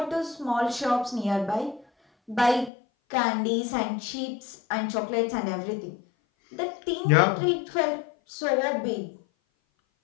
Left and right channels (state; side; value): drops out; right; at 2.7 s